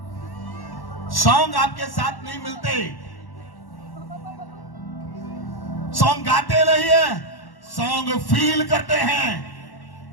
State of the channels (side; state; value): right; late; 1.1 ms